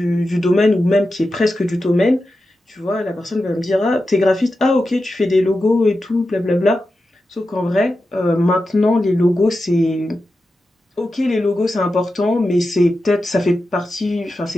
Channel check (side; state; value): both; normal; correlation 0.91